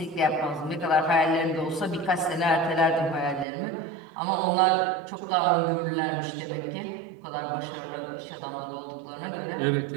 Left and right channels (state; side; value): drops out; left; at 3.5 s